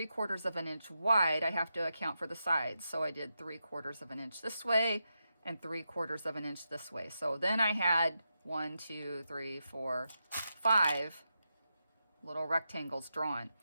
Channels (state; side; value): inverted; both; correlation -0.87